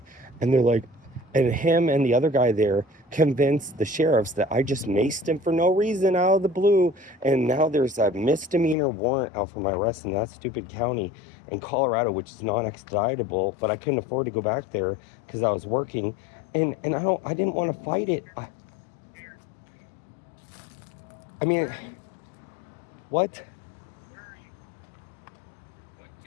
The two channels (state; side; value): drops out; right; at 8.8 s